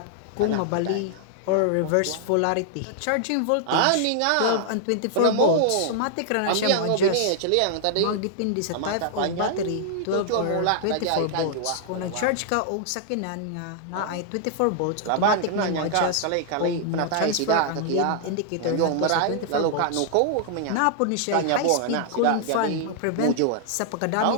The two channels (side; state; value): both; different; correlation 0.00